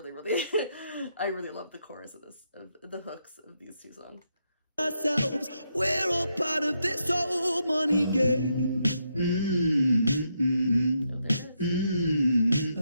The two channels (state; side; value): inverted; both; correlation -0.80